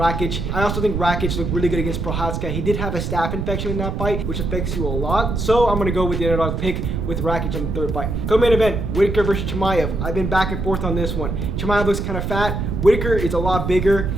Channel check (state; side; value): noise; right; rumble, 2 dB below the sound